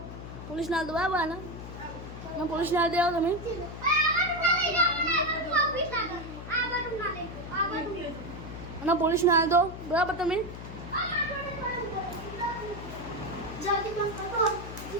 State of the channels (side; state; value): left; noise; hum, 11 dB below the sound